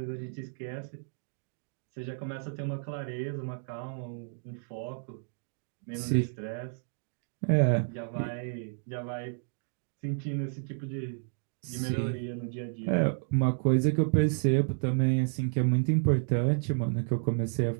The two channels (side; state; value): left; silent; digital silence